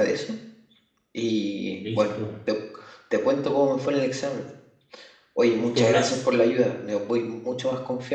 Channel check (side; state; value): both; identical; correlation 1.00